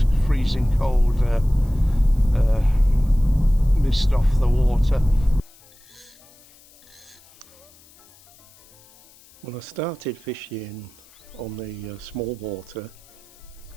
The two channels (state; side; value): noise; left; hiss, 27 dB below the sound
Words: freezing cold mist off the water. Well, I started fishing on the small water